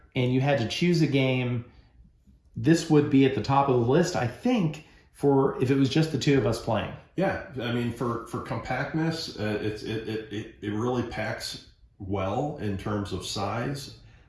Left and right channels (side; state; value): both; identical; correlation 1.00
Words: and you had to choose a game, this would be at the top of the list, I think, for if it was just the 2 of us playing. Yeah, I mean, for compactness, it really packs well in terms of size.